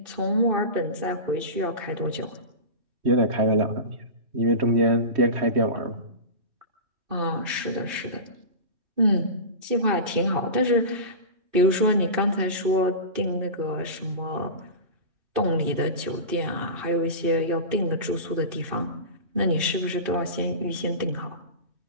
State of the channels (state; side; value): late; left; 2.5 ms